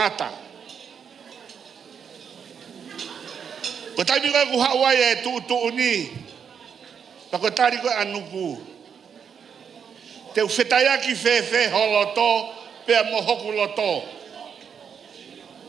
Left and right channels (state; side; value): quieter; left; 7.2 dB